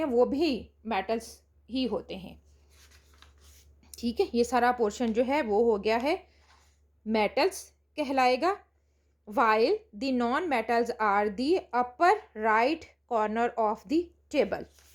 वो भी मेटल्स ही होते हैं. ठीक है, ये सारा पोर्शन जो है वो हो गया है मेटल्स कहलाएगा. While the non metals are the upper right corner of the table.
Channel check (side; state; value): both; identical; correlation 1.00